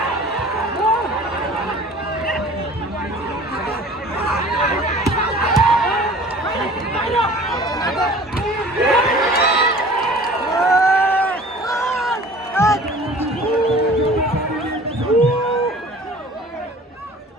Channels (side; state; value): both; normal; correlation 0.45